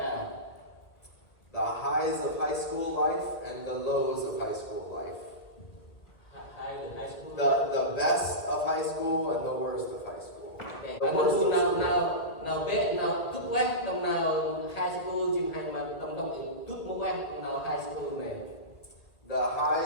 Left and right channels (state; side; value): late; right; 2.0 ms